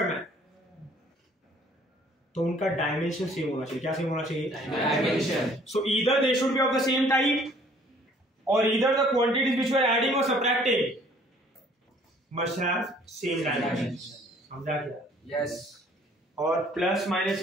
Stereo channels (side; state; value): both; normal; correlation 0.57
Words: है, तो उनका डायमेंशन सेम होना चाहिए। क्या सेम होना चाहिए? Dimension. So either they should be of the same type और either the quantities which we are adding और subtracting must have same dimension. समझा क्या? Yes. और प्लस माइनस